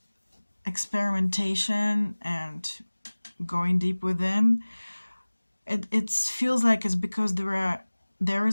experimentation and going deep within. It feels like it's because there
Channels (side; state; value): both; inverted; correlation -1.00